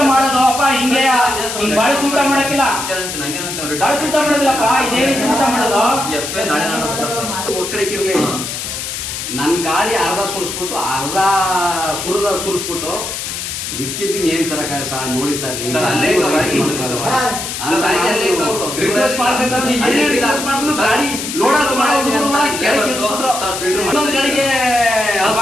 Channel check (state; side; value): noise; left; hiss, 5 dB below the sound